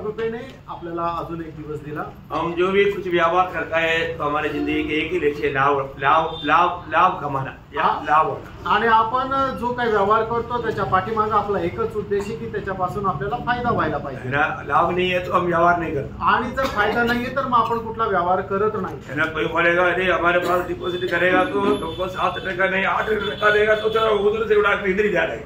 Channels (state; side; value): identical; both; correlation 1.00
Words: आपल्याला अजून एक दिवस दिला। हम जो भी कुछ व्यवहार करता है तो हमारे जिंदगी के एक ही लक्ष्य लाभ कमाना या लाभ होना। आणि आपण जो काही व्यवहार करतो त्याच्या पाठीमागे आपला एकच उद्देश आहे की त्याच्यापासून आपल्याला फायदा व्हायला पाहिजे। लाभ नहीं है तो हम व्यवहार नहीं करते आणि जर फायदा नाहीये तर मग आपण कुठला व्यवहार करत नाही। है ना। कोई बोलेगा अरे हमारे पास डिपॉजिट करेगा तो तुमको 7% नहीं 8% देगा तो चलो उधर से उड़ा इधर ही जा रहे